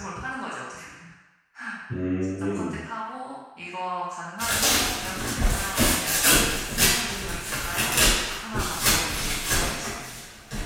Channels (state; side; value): identical; both; correlation 1.00